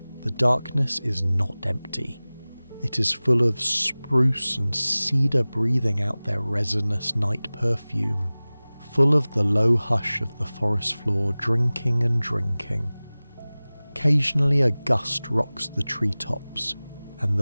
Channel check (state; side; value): inverted; both; correlation -0.99